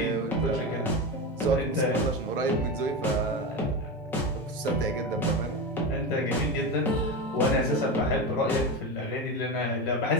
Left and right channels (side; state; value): both; normal; correlation 0.19